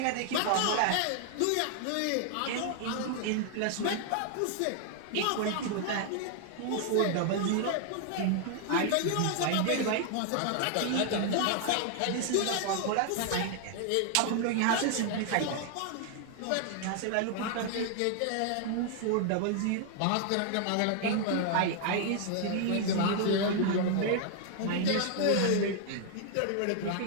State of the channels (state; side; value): different; both; correlation 0.00